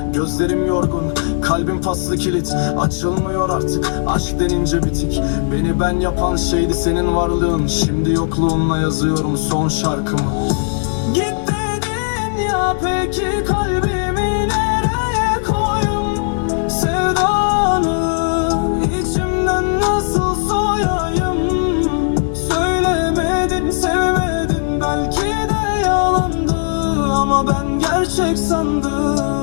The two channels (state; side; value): silent; right; digital silence